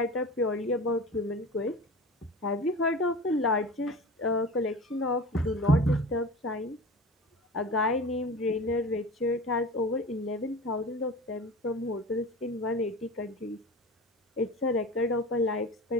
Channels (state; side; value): normal; both; correlation 0.34